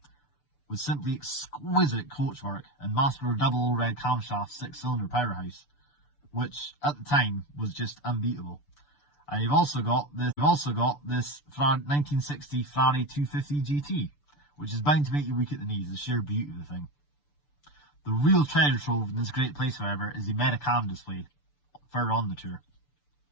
with simply exquisite coachwork and master double red camshaft 6-cylinder powerhouse, which at the time was just unbeatable. And you've also got this 1960 Ferrari 250 GT, which is bound to make you weak at the knees, the sheer beauty of the thing. The real treasure trove in this great place, however, is the Americana display further on the tour.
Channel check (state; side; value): late; right; 6.9 ms